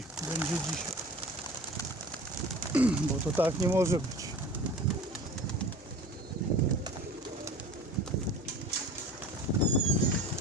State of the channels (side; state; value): both; normal; correlation 0.39